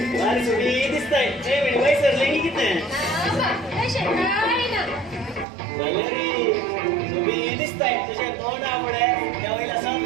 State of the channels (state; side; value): drops out; left; at 5.5 s